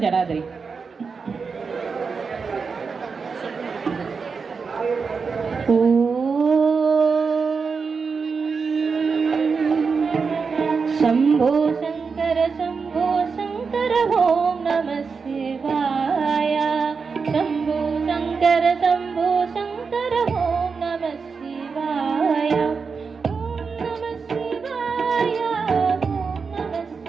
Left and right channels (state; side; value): quieter; left; 5.2 dB